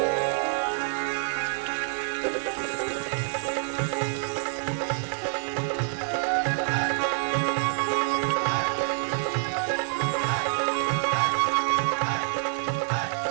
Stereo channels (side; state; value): left; silent; digital silence